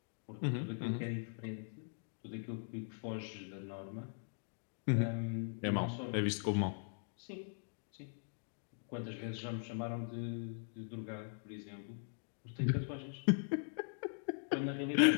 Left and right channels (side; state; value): right; silent; digital silence